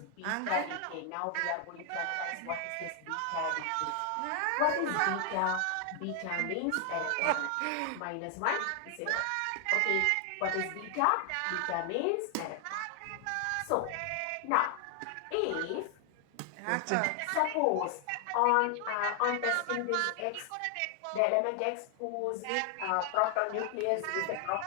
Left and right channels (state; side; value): different; both; correlation 0.00